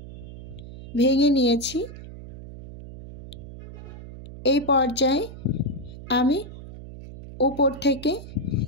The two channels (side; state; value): right; noise; hum, 14 dB below the sound